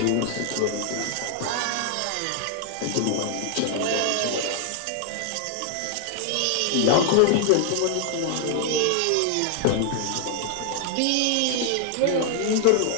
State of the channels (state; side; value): different; both; correlation 0.00